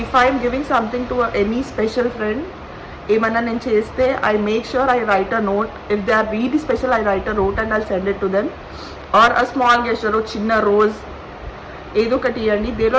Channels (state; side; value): identical; both; correlation 1.00